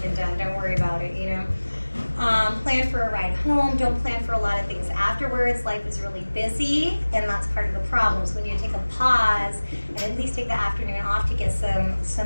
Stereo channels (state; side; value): inverted; both; correlation -1.00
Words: done. Don't worry about it, you know. Plan for a ride home. Don't plan for a lot of things afterwards. Life is really busy, and that's part of the problem. So we need to take a pause and at least take the afternoon off to get